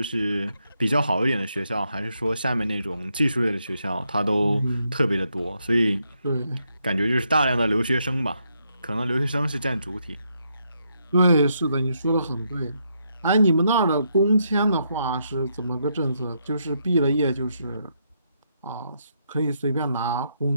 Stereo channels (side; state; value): both; inverted; correlation -0.78